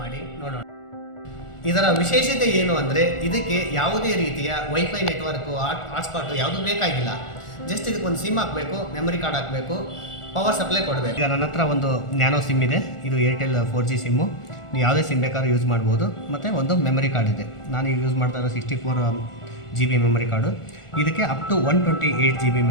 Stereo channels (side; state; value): right; late; 1.4 ms